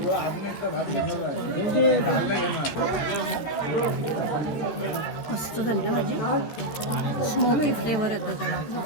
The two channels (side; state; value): right; late; 14 ms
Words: मस्त झाली ना भाजी स्मोकी फ्लेवर येतो त्याला